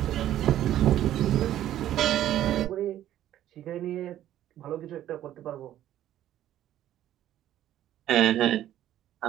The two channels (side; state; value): left; quieter; 12.3 dB